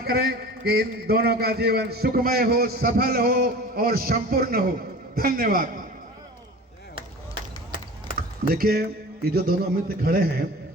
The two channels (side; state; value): both; normal; correlation 0.38